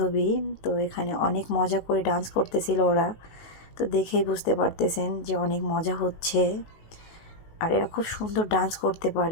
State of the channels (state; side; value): late; right; 19 ms